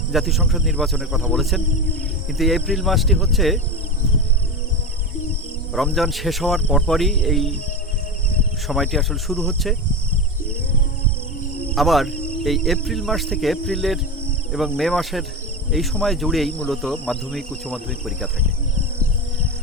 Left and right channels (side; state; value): both; normal; correlation 0.21